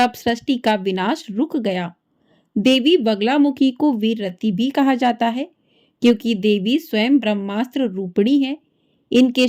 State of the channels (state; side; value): identical; both; correlation 1.00